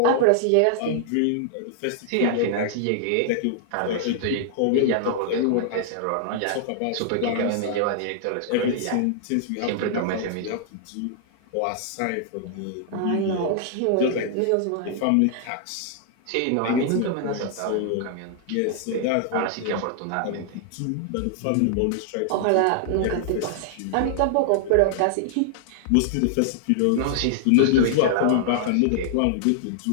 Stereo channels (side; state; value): both; different; correlation -0.01